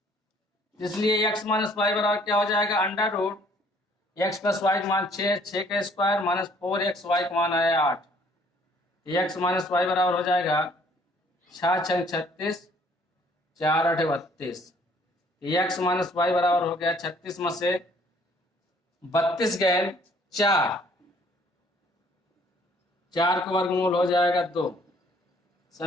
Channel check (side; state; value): both; normal; correlation 0.60